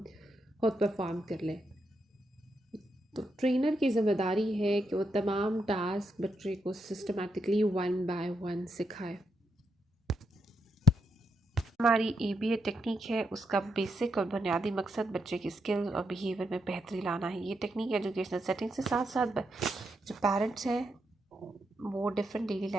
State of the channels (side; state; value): both; normal; correlation 0.82